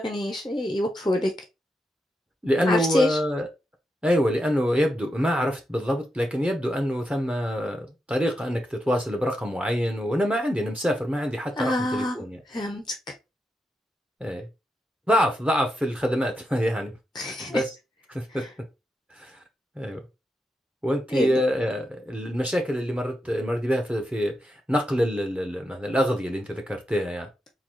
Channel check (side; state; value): both; normal; correlation 0.85